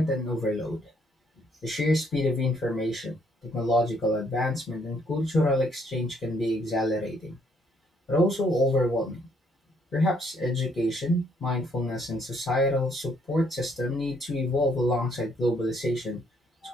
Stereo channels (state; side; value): normal; both; correlation 0.68